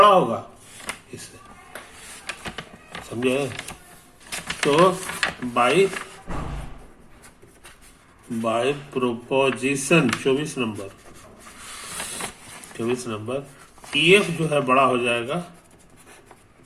होगा इससे, समझे। तो बाय प्रोपोजिशन 24 नंबर EF जो है बड़ा हो जाएगा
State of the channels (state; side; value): identical; both; correlation 1.00